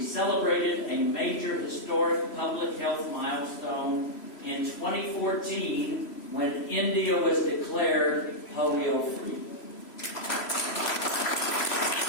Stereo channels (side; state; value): right; late; 3.0 ms